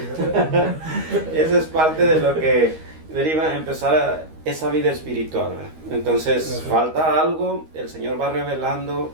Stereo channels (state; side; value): late; left; 13 ms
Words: es parte de lo que deriva empezar esa vida espiritual, ¿verdad? Entonces falta algo, el Señor va revelando